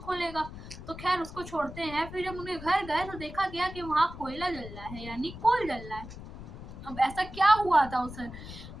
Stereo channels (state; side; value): noise; left; rumble, 12 dB below the sound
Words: खोलेगा। तो खैर उसको छोड़ते हैं। फिर जब उनके घर गए तो देखा गया कि वहाँ कोयला जल रहा है यानी कोल जल रहा है। अब ऐसा क्या हुआ था उस,